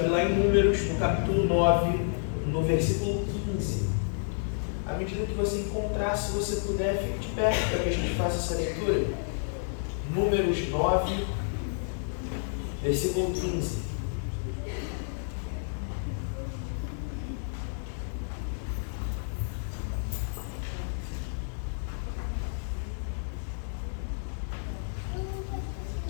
lá em Números, no capítulo 9, no versículo 15. À medida que você encontrar, se você puder, fique de pé para que a gente faça essa leitura. Números 9, versículo 15.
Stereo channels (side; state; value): right; silent; digital silence